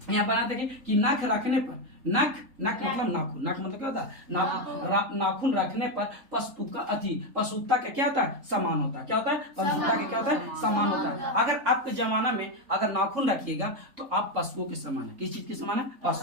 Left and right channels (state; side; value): late; left; 3.7 ms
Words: यहाँ बनाते गए कि नाक रखने पर, नख मतलब नाखून, नख मतलब क्या होता है, नाखून रखने पर पशुता का क्या होता है, समान होता है। क्या होता है, पशुता के क्या होता है, समान होता है। अगर आपके जमाना में अगर नाखून रखिएगा तो आप पशुओं के समान है। किस चीज के समान है,